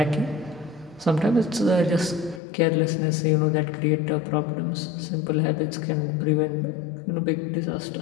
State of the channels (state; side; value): drops out; right; at 2.4 s